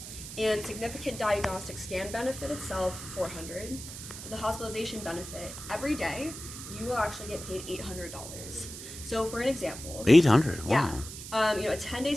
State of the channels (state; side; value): noise; right; hiss, 11 dB below the sound